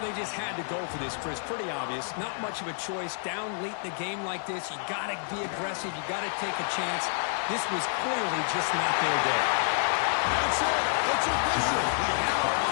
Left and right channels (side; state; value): right; silent; 59 dB below the other